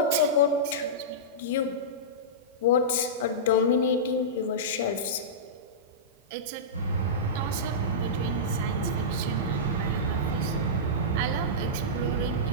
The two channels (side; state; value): both; normal; correlation -0.16